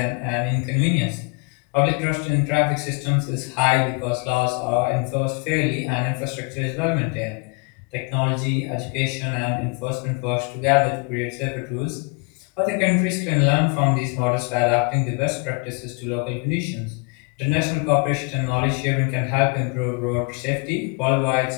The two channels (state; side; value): quieter; right; 33.9 dB